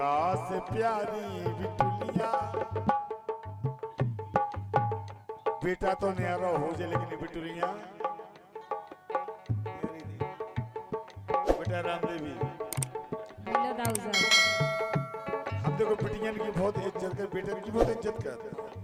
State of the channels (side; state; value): both; identical; correlation 1.00